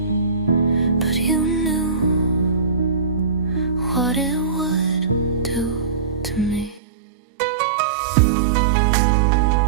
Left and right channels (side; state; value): left; drops out; at 6.8 s